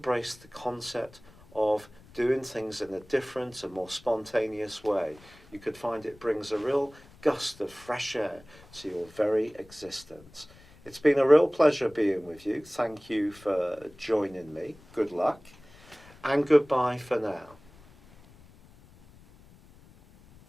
the concept of doing things in a different and more spontaneous way. You could find it brings a real gust of fresh air to your very existence. It's been a real pleasure being with you. Thank you for joining me. Good luck. And goodbye for now.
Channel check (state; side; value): noise; left; rumble, 24 dB below the sound